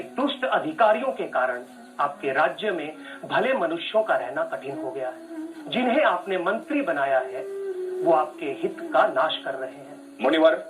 दुष्ट अधिकारियों के कारण आपके राज्य में भले मनुष्यों का रहना कठिन हो गया है। जिन्हें आपने मंत्री बनाया है वो आपके हित का नाश कर रहे हैं। मुनिवर,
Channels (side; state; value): both; identical; correlation 1.00